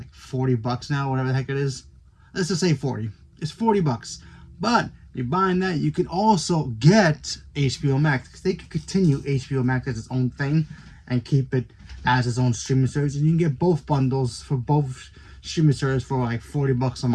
$40 now, whatever the heck it is. Let's just say 40. It's $40. But you're buying that, you can also get HBO Max, because they can continue HBO Max as its own thing and keep it as its own streaming service, and you can get both bundles for both streaming services for like $40 a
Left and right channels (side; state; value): both; identical; correlation 1.00